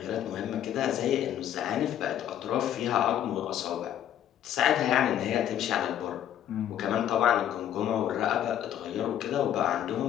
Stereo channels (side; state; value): right; quieter; 10.8 dB